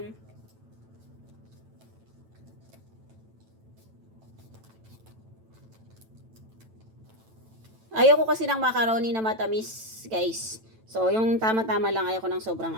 Ayoko kasi ng macaroni na matamis, guys. So, yung tama-tama lang, ayoko ng sobrang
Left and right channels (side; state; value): left; late; 9.0 ms